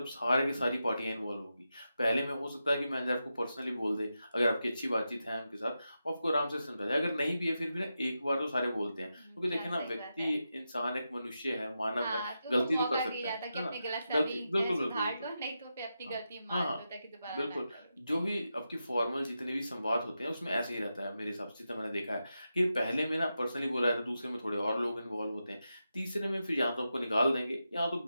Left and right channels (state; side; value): inverted; both; correlation -0.88